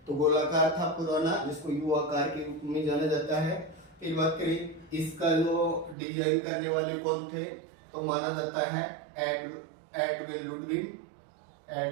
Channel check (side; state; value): left; drops out; at 6.0 s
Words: तो गोलाकार था पुराना, जिसको यू आकार के रूप में जाना जाता है। फिर बात करें इसका जो डिजाइन करने वाले कौन थे, तो माना जाता है एडविन लुडविन